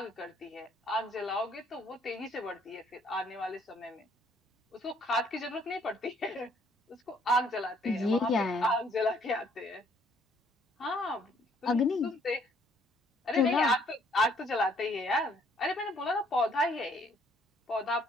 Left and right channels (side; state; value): both; normal; correlation 0.64